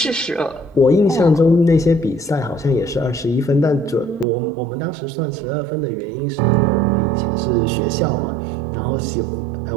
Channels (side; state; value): left; drops out; at 4.2 s